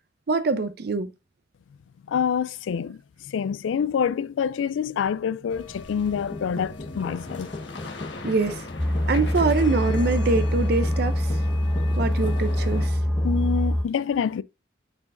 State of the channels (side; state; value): both; normal; correlation 0.42